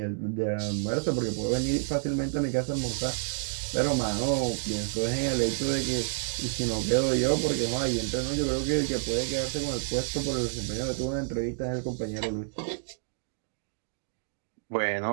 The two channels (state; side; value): silent; left; 58 dB below the other